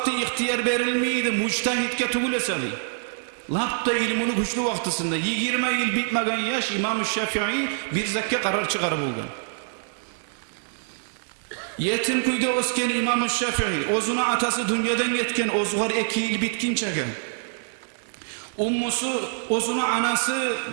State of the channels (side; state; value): left; silent; digital silence